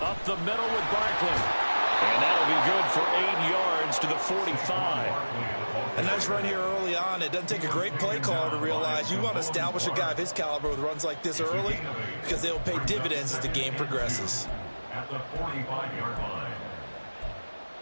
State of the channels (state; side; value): inverted; both; correlation -1.00